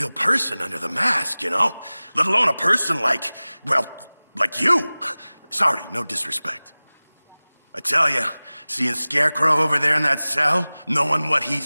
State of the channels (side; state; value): both; inverted; correlation -0.99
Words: person under the mask, you know? Let alone a person like you. Sorry, no disrespect. I tell you, seeing Scarecrow over there in that cell, knowing what